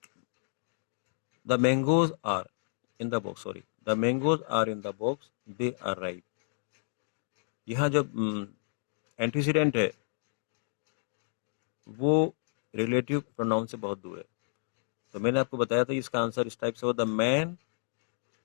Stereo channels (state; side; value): silent; right; digital silence